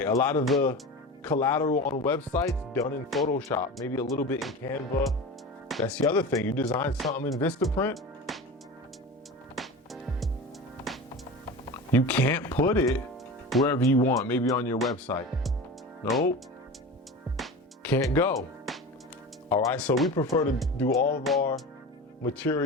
A lot of the collateral on websites done in Photoshop. Maybe a little bit in Canva. That's the other thing. You design something in Vistaprint, you can't put it wherever you want, maybe on your website. Nope, can't go. All right, so we prefer to do all of our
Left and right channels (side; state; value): both; normal; correlation 0.31